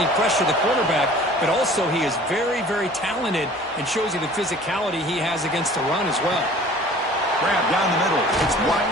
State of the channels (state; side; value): normal; both; correlation 0.48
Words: he pressure the quarterback, but also he is very, very talented and shows you the physicality he has against the run as well. Grab down the middle. It's